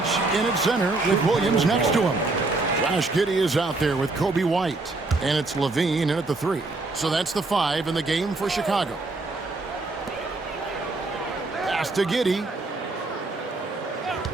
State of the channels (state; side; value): quieter; left; 3.3 dB